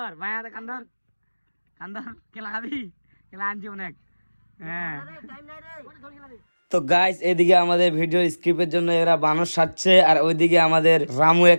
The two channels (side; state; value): both; inverted; correlation -1.00